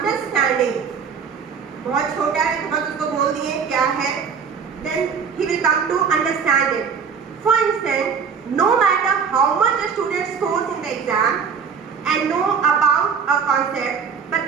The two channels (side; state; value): left; quieter; 6.4 dB